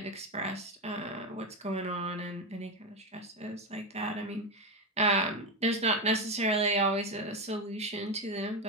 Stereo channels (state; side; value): normal; both; correlation 0.12